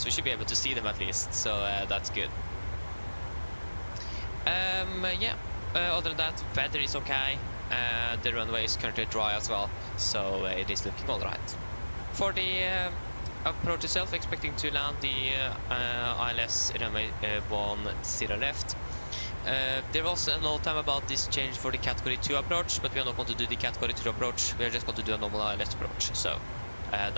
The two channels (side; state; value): both; inverted; correlation -1.00